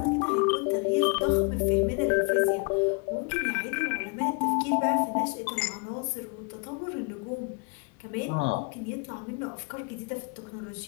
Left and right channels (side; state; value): right; quieter; 33.4 dB